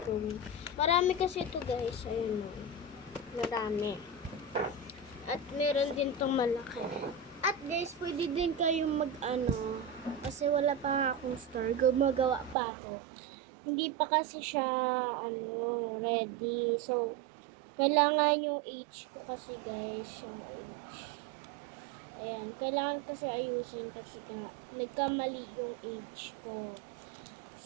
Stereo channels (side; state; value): left; drops out; at 12.6 s